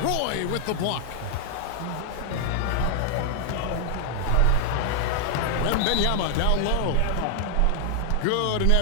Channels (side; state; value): both; different; correlation 0.00